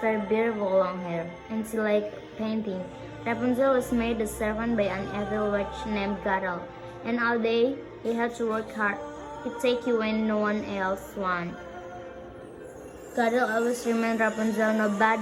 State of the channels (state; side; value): identical; both; correlation 1.00